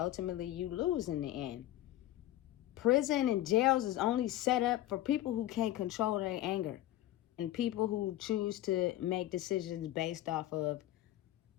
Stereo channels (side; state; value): right; quieter; 14.2 dB